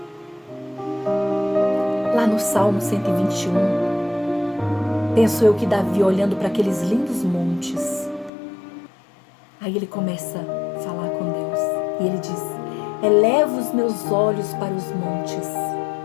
Lá no Salmo 121, penso eu que Davi, olhando para aqueles lindos montes, aí ele começa a falar com Deus. E ele diz: eleva os meus olhos para os montes,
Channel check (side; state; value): right; drops out; at 8.3 s